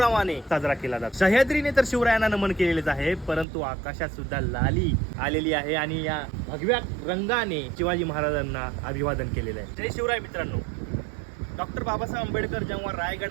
साजरा केला जातो। सह्याद्रीने तर शिवरायांना नमन केलेलेच आहे, परंतु आकाशात सुद्धा लाली आलेली आहे आणि या भगव्या रंगाने शिवाजी महाराजांना अभिवादन केलेलं आहे। जय शिवराय मित्रांनो। डॉक्टर बाबासाहेब आंबेडकर जेव्हा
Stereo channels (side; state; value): left; drops out; at 3.5 s